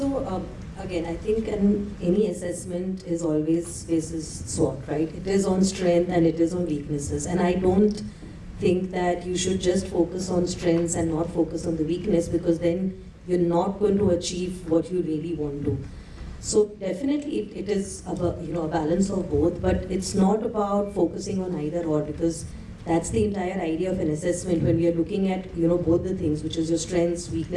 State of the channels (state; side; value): identical; both; correlation 1.00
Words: again, I think any assessment is always basis SWOT, right? It is on strength and it is on weaknesses. And I don't think that you should just focus on strengths and not focus on the weakness, because then you're not going to achieve what you really want to. So definitely it is a balance of both, but it's not about focusing on either or, because that's the entire idea of an assessment when we are looking at both the things, which is your strengths,